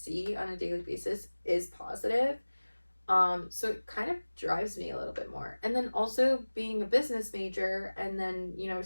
on a daily basis is positive, so it kind of drives me a little bit more. And then also being a business major and then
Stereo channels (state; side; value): inverted; both; correlation -1.00